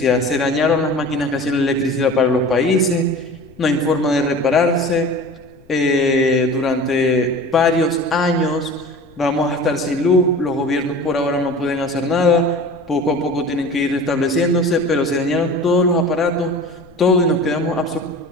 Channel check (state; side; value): noise; left; rumble, 27 dB below the sound